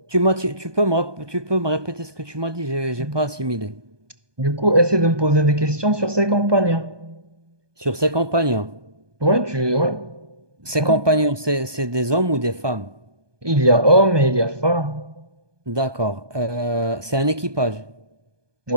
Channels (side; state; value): left; late; 1.2 ms